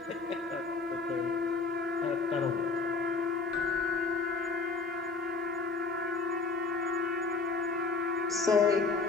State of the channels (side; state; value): right; quieter; 4.1 dB